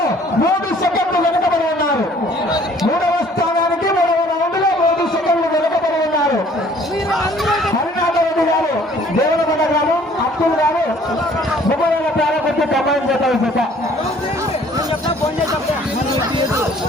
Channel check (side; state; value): both; normal; correlation 0.56